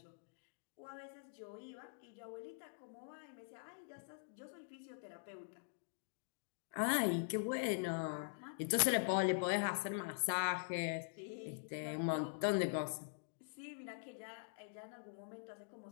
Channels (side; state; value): right; silent; digital silence